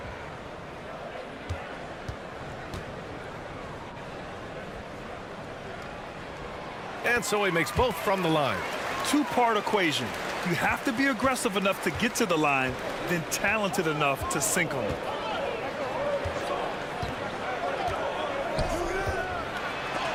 And so he makes both from the line. 2-part equation. You have to be aggressive enough to get to the line, then talented enough to sink them.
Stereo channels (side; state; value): both; identical; correlation 1.00